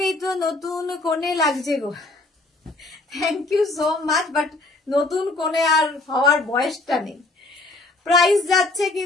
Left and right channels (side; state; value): right; quieter; 3.1 dB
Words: তো নতুন কোণে লাগছে গো thank you so much but নতুন কোণে আর হওয়ার বয়সটা নেই প্রাইস যাচ্ছে